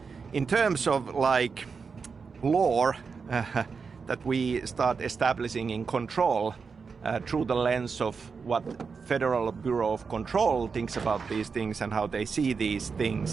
in terms of like lore that we start establishing in Control through the lens of what Federal Bureau of Control thinks about these things and how they see these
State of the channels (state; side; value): quieter; left; 5.3 dB